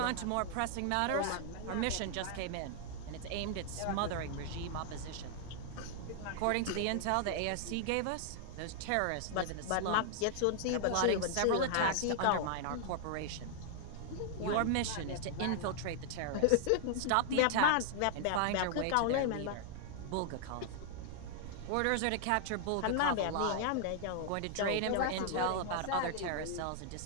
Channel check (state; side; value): different; both; correlation 0.00